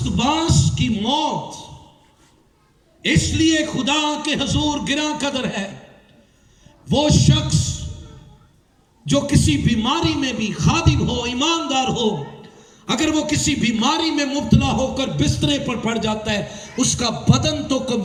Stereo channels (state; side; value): identical; both; correlation 1.00